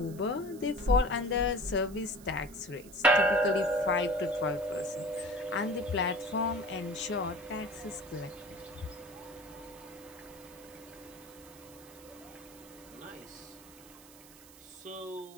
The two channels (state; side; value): noise; right; hiss, 20 dB below the sound